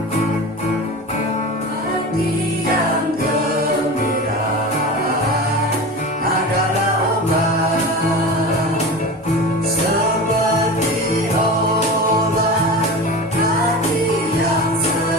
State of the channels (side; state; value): both; normal; correlation 0.31